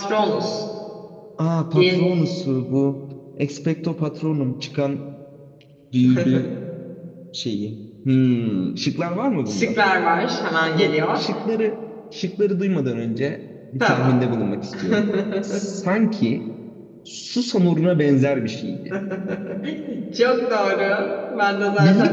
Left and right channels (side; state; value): both; identical; correlation 1.00